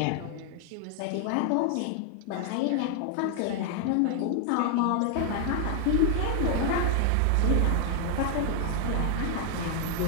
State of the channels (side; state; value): both; different; correlation 0.00